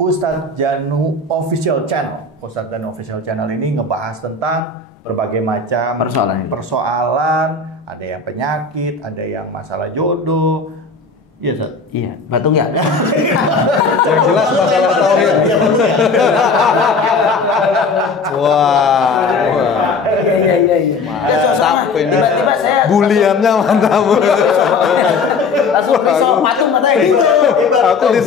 Janu Official Channel. Ustadz Janu Official Channel ini ngebahas tentang berbagai macam persoalan. Ada yang penyakit, ada yang masalah jodoh. Iya, Ustaz. Iya, batung ya. Yang jelas masalah tauhid. Iya, batung ya. Wah. Iya. Mantap ini. Tiba-tiba saya Buliannya mantap. langsung pisau patung matanya. Aku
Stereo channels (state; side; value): quieter; right; 4.2 dB